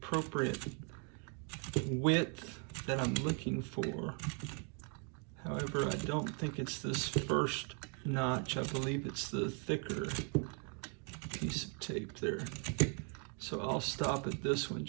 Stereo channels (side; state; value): left; quieter; 38.7 dB